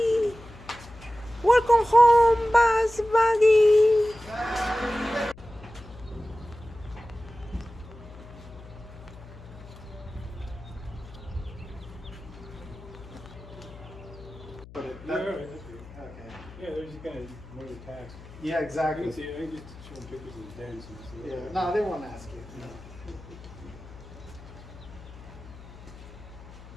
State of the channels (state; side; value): noise; left; hum, 17 dB below the sound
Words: Welcome home, bus buggy. Yeah, right, that's good. Okay. Yeah, they're just gonna more the tax. Yeah, You exactly. can see, I can just show them pictures of the dents and stuff. Yeah. No, they won't ask you.